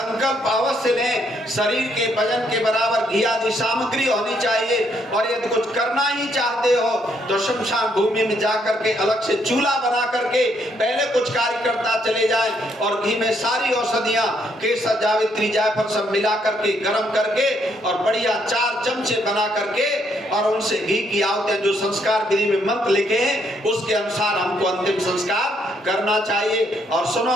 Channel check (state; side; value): normal; both; correlation 0.72